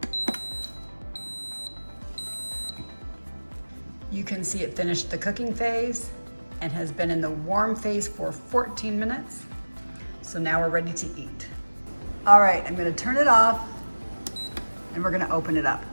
You can see it finished the cooking phase and has been in the warm phase for 14 minutes. So now we're ready to eat. All right, I'm gonna turn it off and we're gonna open it up.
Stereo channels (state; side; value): inverted; both; correlation -1.00